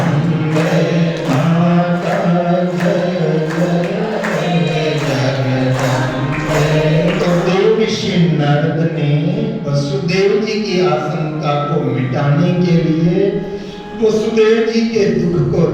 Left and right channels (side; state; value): both; identical; correlation 1.00